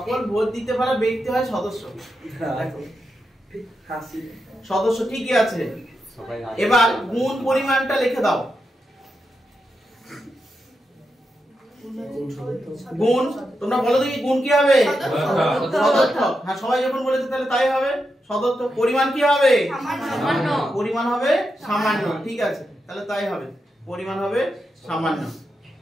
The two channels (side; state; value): both; normal; correlation 0.86